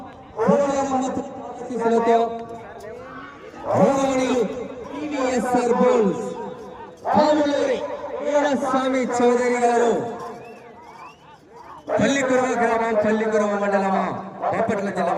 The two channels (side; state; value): both; identical; correlation 1.00